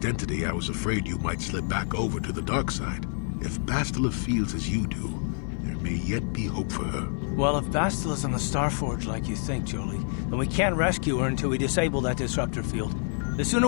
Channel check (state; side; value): silent; right; 60 dB below the other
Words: I was afraid you might slip back over to the dark side. If Bastila feels as you do, there may yet be hope for her. Well, if Bastila's on the Starforge like you think, Jolie, then we can't rescue her until we disable that disruptor field. The sooner